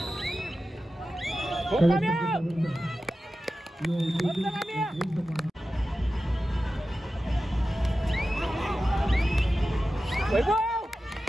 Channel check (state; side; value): normal; both; correlation 0.93